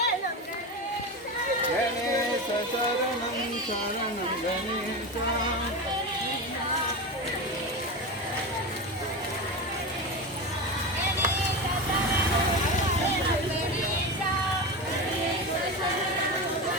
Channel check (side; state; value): both; normal; correlation 0.22